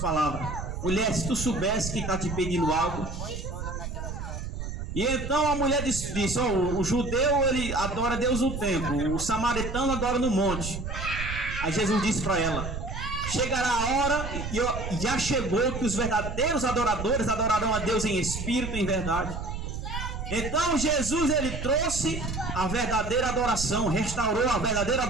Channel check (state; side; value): noise; right; rumble, 6 dB below the sound